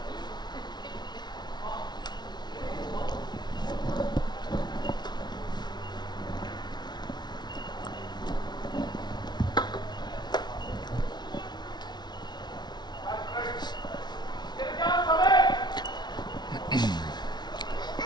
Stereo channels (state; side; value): late; right; 0.20 ms